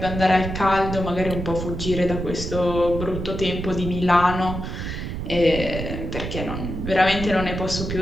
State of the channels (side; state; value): right; noise; rumble, 5 dB below the sound